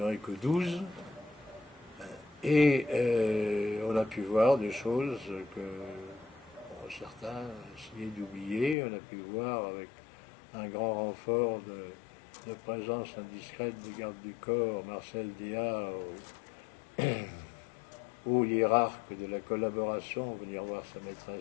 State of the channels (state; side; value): drops out; right; at 8.8 s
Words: que 12. Et on a pu voir des choses que certains essayaient d'oublier. On a pu voir avec un grand renfort de présence indiscrète des gardes du corps, Marcel Déat, haut hiérarque de la collaboration, venir voir sa